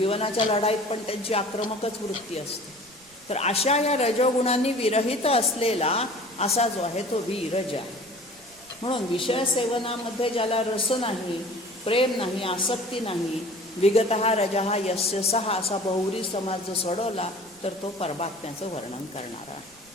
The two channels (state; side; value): noise; right; rumble, 29 dB below the sound